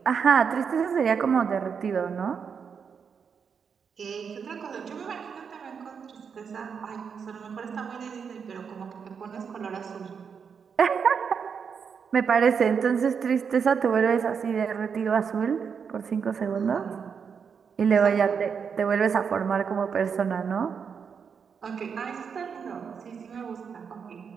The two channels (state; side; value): quieter; left; 6.5 dB